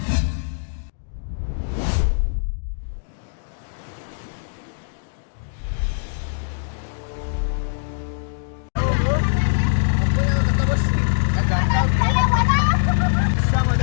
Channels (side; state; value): right; silent; digital silence